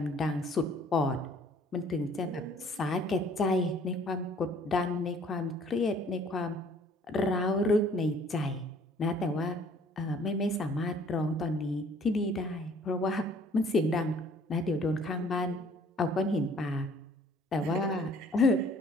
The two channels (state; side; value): normal; both; correlation 0.56